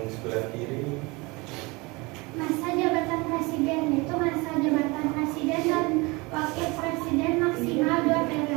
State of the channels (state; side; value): quieter; left; 25.4 dB